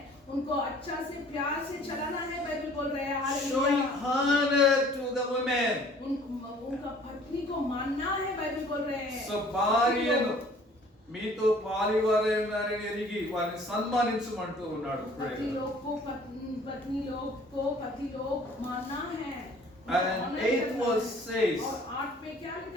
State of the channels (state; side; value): normal; both; correlation 0.53